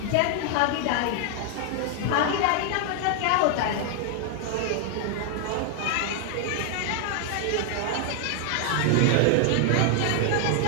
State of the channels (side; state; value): both; different; correlation 0.00